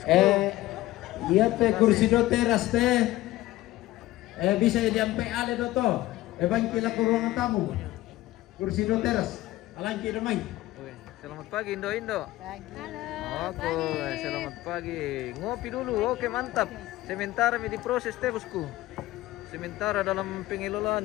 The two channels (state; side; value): quieter; right; 16.8 dB